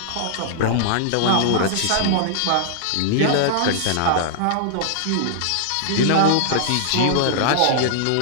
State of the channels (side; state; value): both; different; correlation -0.01